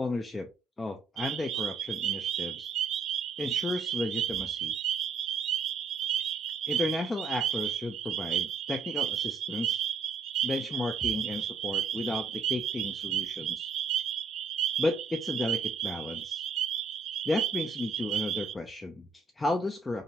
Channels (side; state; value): left; quieter; 3.8 dB